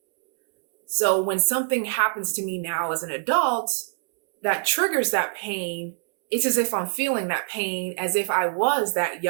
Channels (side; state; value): left; silent; 62 dB below the other